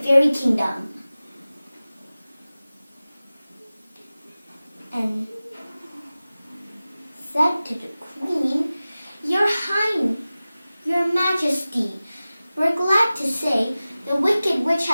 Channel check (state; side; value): inverted; both; correlation -0.97